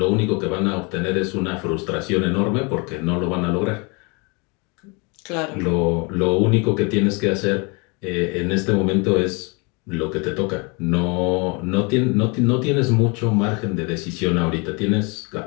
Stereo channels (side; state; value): right; quieter; 30.3 dB